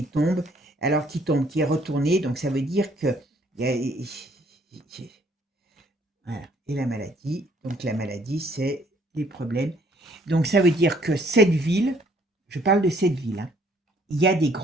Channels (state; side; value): normal; both; correlation 0.63